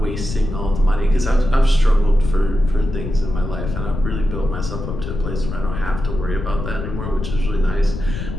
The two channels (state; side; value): noise; left; rumble, 6 dB below the sound